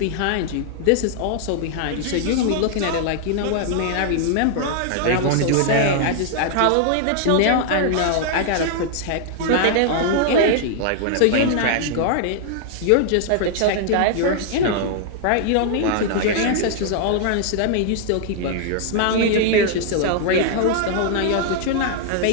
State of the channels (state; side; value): different; both; correlation -0.01